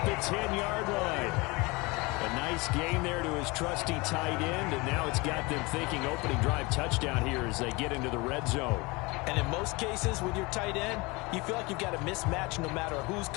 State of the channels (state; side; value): quieter; right; 25.1 dB